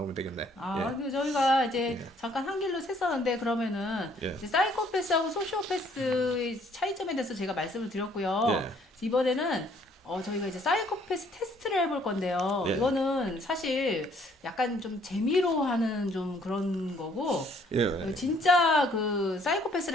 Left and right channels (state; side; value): normal; both; correlation 0.63